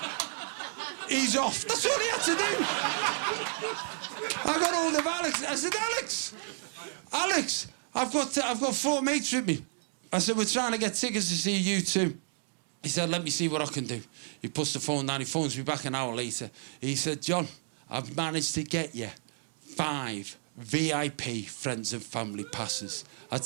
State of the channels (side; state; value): left; silent; digital silence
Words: He's off. That's all he had to do. I got hold of Alex. I said, Alex, I've got 4 mates with me. I said, we're trying to get tickets to see U2. He said, let me see what I can do. He puts the phone down. He phones me back an hour later. He said, John, I've managed to get you 5 VIP friends and family passes. I